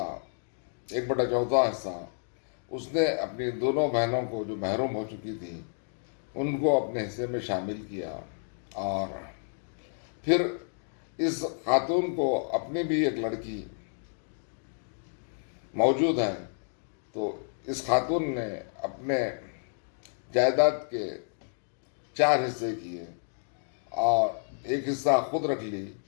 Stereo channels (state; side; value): silent; right; digital silence